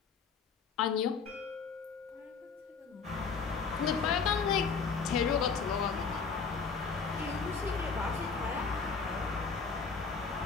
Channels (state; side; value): quieter; right; 5.3 dB